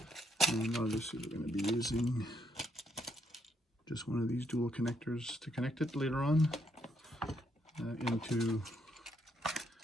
And obviously we're going to be using just one of these dual connectors to connect it later on into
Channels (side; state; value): both; normal; correlation 0.74